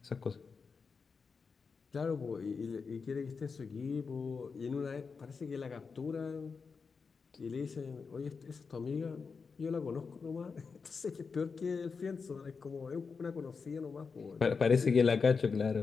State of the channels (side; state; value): right; quieter; 5.1 dB